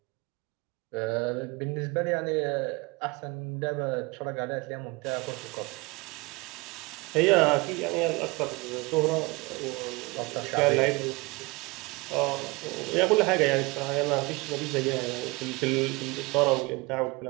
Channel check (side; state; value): left; quieter; 25.5 dB